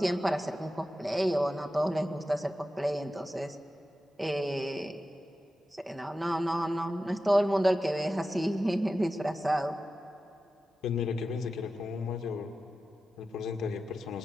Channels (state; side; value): normal; both; correlation 0.93